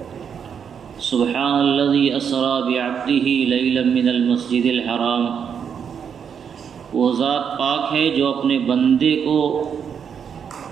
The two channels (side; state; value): left; quieter; 7.4 dB